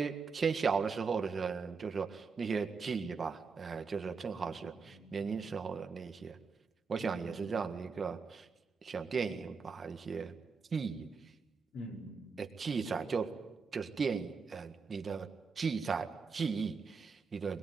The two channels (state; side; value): quieter; left; 5.1 dB